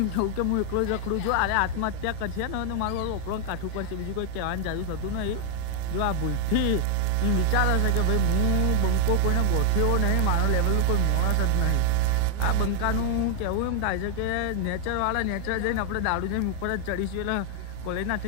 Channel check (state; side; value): different; both; correlation 0.01